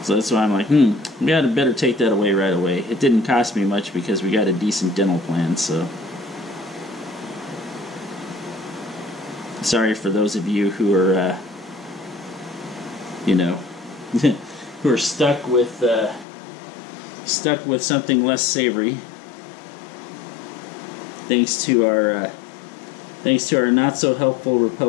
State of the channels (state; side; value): drops out; right; at 16.2 s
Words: that's why I'm like, we had to better take that away right away. It didn't cost me much because we got a decent dental plan. So sorry for those of you who are, who are stuck with something less savory. Thanks to our not so helpful